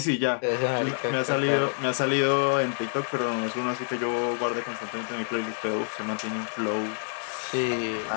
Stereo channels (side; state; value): right; silent; 60 dB below the other